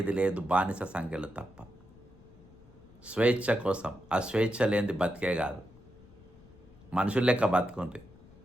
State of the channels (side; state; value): left; noise; rumble, 24 dB below the sound